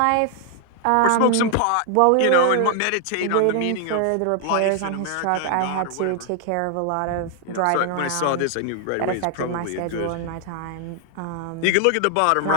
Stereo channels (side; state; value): both; different; correlation 0.00